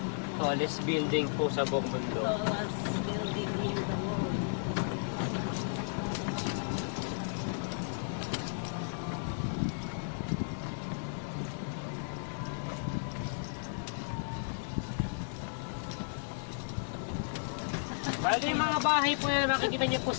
Tallest building po sa buong mundo. Tallest building in the world. Bali, mga bahay po na makikita niyo po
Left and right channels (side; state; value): right; silent; digital silence